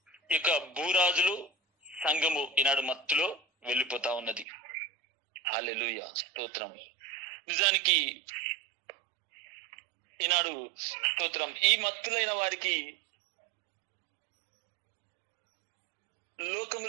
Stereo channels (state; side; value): drops out; left; at 4.5 s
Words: యొక్క భూరాజులు సంఘము ఈనాడు మత్తులో వెళ్ళిపోతా ఉన్నది. హల్లెలూయా. స్తోత్రం. నిజానికి ఈనాడు స్తోత్రం, ఈ మత్తులైన వారికి